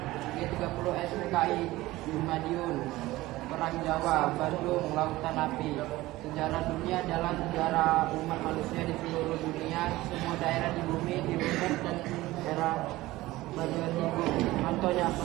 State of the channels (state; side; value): quieter; left; 18.0 dB